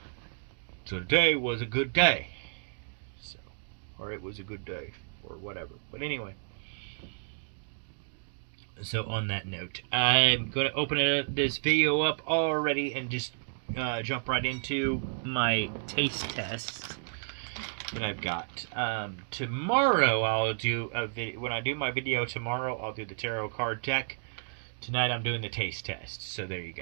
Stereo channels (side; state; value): left; silent; digital silence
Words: So today was a good day. So, or it was a good day, or whatever. But anyway. So on that note, I'm going to open this video up already and just jump right into my taste test that I've got. Tomorrow I'll do a video. When I do my video tomorrow, I'll do the tarot card deck. Tonight I'm doing the taste test. So there you